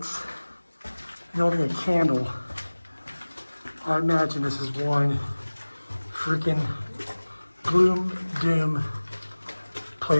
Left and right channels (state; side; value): inverted; both; correlation -1.00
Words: and only a candle, I imagine this is one freaking gloom, doom